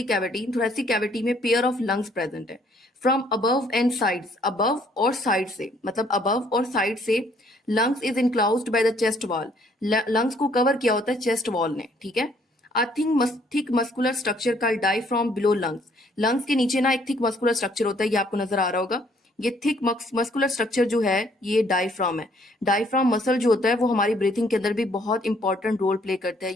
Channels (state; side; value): normal; both; correlation 0.64